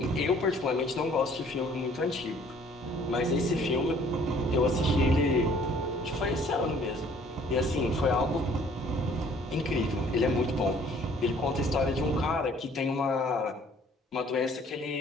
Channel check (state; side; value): normal; both; correlation 0.57